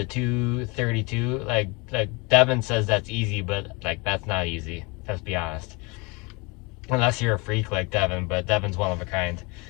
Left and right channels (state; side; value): quieter; right; 27.8 dB